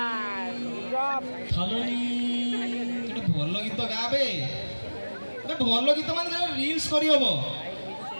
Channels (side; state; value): both; inverted; correlation -1.00